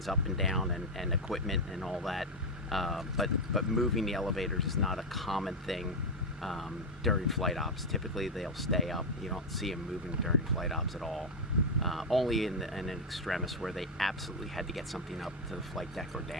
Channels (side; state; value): both; normal; correlation 0.03